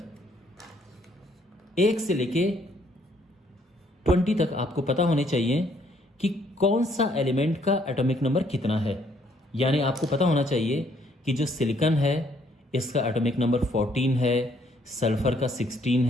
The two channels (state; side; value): normal; both; correlation 0.67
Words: 1 से लेके 20 तक आपको पता होने चाहिए कि कौन सा एलिमेंट का एटॉमिक नंबर कितना है। यानी आपको पता होना चाहिए कि जो सिलिकॉन है इसका एटॉमिक नंबर 14 है, सल्फर का 16